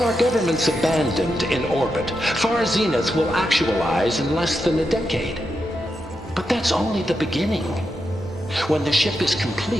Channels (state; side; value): normal; both; correlation 0.86